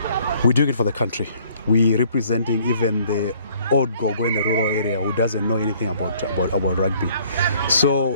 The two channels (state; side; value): inverted; both; correlation -0.60